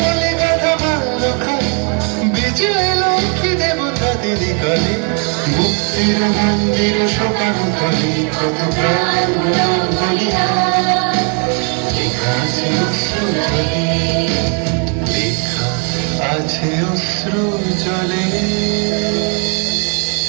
গাথা মাল্য খায় বিজয় লক্ষ্মী দেবতা দিদি কালে মুক্তির মন্দির সকাল কলি কত প্রাণ বলিদান লেখা আছে অশ্রু জলে লেখা আছে অশ্রু জলে।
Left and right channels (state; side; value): quieter; left; 38.1 dB